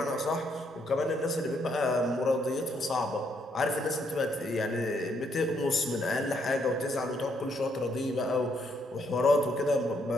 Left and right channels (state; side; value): normal; both; correlation 0.73